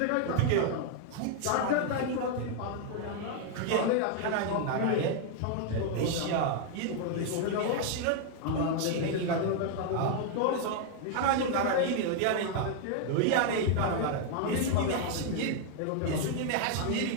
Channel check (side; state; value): both; different; correlation 0.00